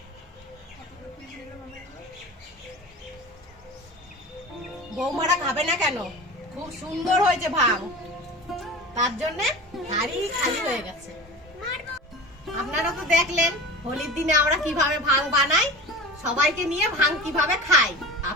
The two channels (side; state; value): both; normal; correlation 0.35